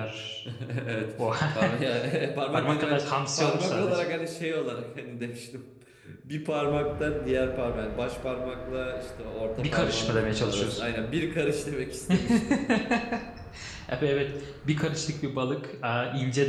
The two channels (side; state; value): both; identical; correlation 1.00